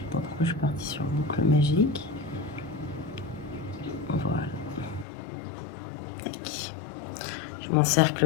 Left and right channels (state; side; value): drops out; right; at 5.1 s